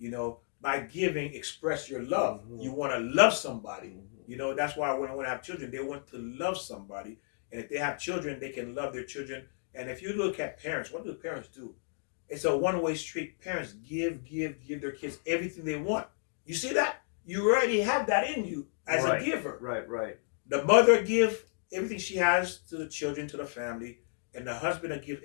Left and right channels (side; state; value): right; silent; digital silence